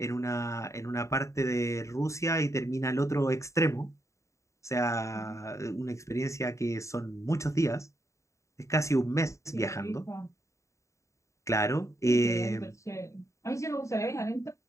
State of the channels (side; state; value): right; late; 0.15 ms